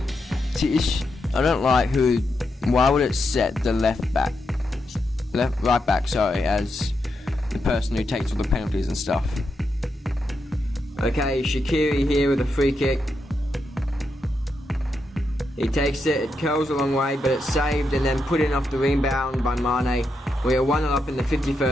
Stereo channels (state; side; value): normal; both; correlation 0.84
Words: I don't like why would it set the right back, sorry, as the person who takes all the penalties and stuff. Okay, Shaqiri here with a free kick. He takes it, it curls a long way, but it's saved and then put in off the rebound by Mane. We are 1-0 up in the